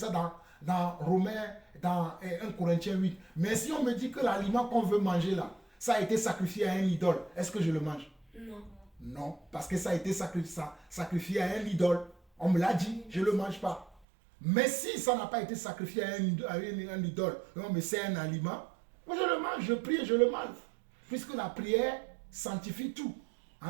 dans Romains, dans 1 Corinthiens 8. Mais si on me dit que l'aliment qu'on veut manger là, ça a été sacrifié à un idole, est-ce que je le mange? Non. Non, parce que ça a été sacrifié à un idole. On me l'a dit, je ne le mange pas. Mais si ça n'a pas été sacrifié à un idole, non, mais c'est un aliment, moi je le mange, je prie et je le mange. Puisque la prière sanctifie tout.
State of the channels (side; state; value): left; drops out; at 14.0 s